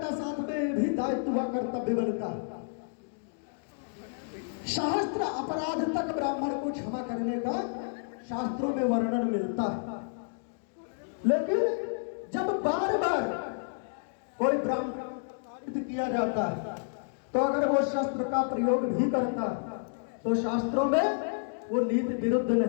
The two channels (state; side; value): silent; right; digital silence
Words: साथ में भी दायित्व व कर्तव्य बनता है। शास्त्र अपराध तक ब्राह्मण को क्षमा करने का शास्त्रों में वर्णन मिलता है, लेकिन जब बार बार कोई ब्राह्मण किया जाता है तो अगर वो शस्त्र का प्रयोग भी करता है तो शास्त्रों में वो नीति विरुद्ध